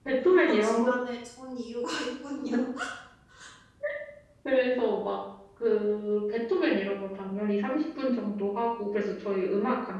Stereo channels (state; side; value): identical; both; correlation 1.00